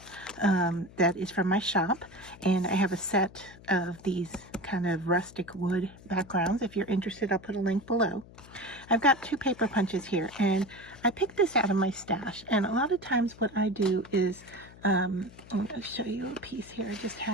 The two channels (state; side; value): noise; left; hum, 20 dB below the sound